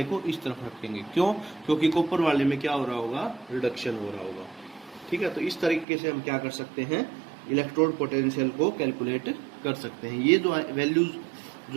को इस तरफ रखेंगे। क्यों, क्योंकि कॉपर वाले में क्या हो रहा होगा, रिडक्शन हो रहा होगा, ठीक है। तो इस तरीके से हम क्या कर सकते हैं, इलेक्ट्रोड पोटेंशियल को कैलकुलेट कर सकते हैं। ये जो वैल्यूज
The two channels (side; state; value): left; drops out; at 5.9 s